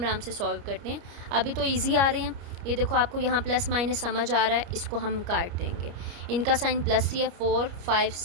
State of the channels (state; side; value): late; left; 29 ms